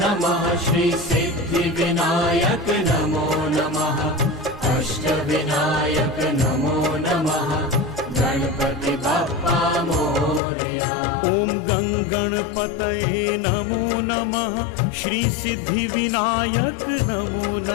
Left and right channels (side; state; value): right; drops out; at 10.4 s